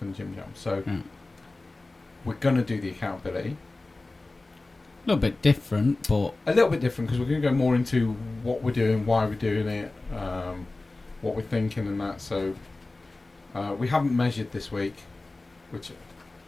and Jim Jam. So we're going to do the accountability. A little bit different, but... A little bit different, because we're going to go more into what we're doing, why we're doing it, what we're thinking and that. So we haven't measured this week, which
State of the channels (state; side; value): quieter; right; 3.2 dB